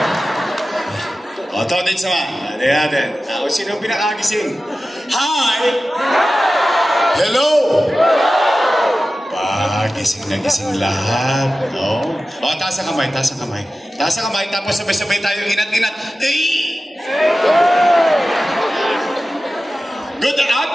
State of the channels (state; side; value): normal; both; correlation 0.94